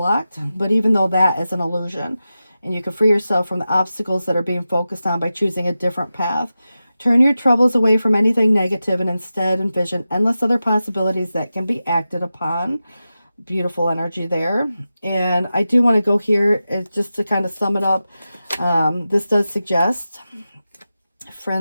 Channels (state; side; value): inverted; both; correlation -0.93